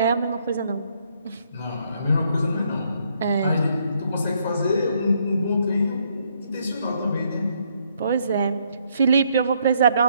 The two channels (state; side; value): inverted; both; correlation -0.71